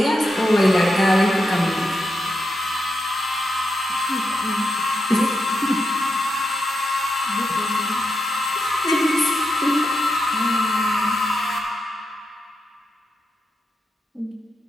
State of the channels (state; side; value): normal; both; correlation 0.85